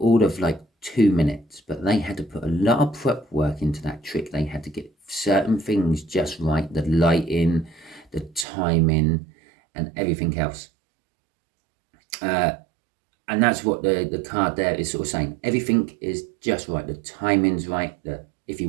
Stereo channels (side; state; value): left; drops out; at 8.5 s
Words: of like 2 minutes, but they had to put a lot of prep work into that trick. They had to get certain things just right, the lighting, the timing, and everything else. And that's what the card there is sort of saying. Everything is just right. The timing's right. If you